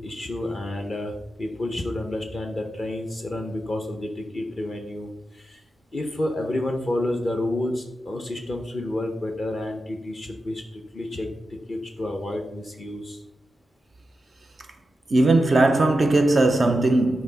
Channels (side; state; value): both; normal; correlation 0.90